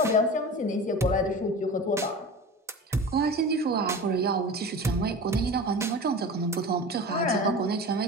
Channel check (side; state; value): both; normal; correlation 0.33